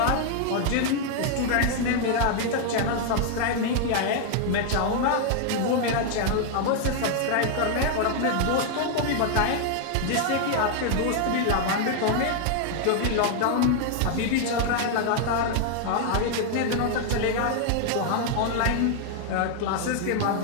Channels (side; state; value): both; different; correlation 0.00